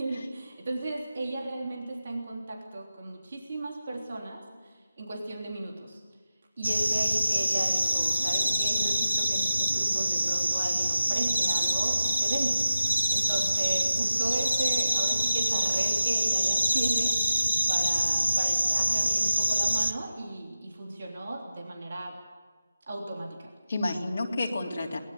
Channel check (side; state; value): both; inverted; correlation -0.92